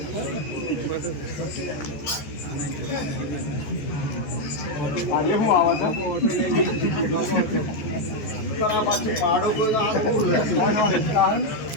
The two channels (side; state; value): right; late; 14 ms